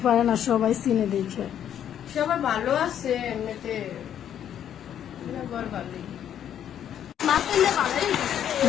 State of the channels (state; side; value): quieter; right; 9.9 dB